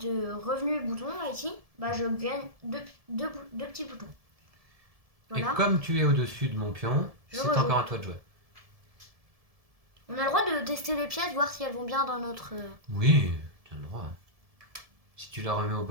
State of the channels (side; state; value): left; late; 1.7 ms